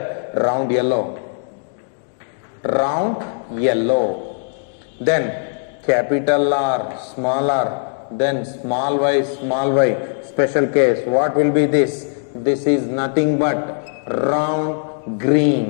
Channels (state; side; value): silent; right; digital silence